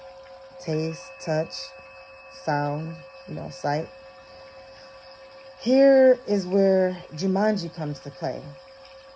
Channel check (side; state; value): both; identical; correlation 1.00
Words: Taste, touch, sound, sight. Here is where Jumanji comes to play.